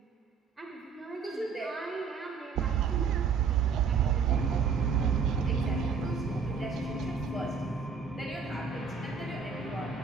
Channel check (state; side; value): quieter; left; 5.7 dB